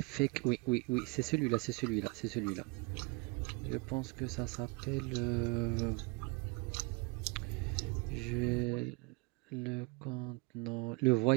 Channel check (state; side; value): quieter; left; 29.8 dB